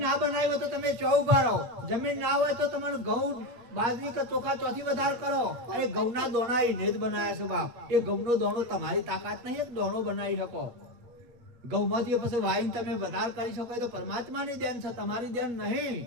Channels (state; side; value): late; left; 8.4 ms